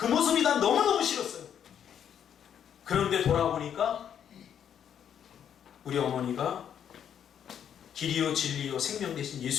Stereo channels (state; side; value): quieter; right; 8.9 dB